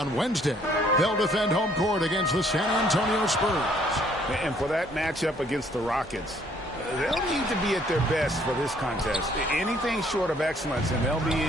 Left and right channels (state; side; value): normal; both; correlation 0.63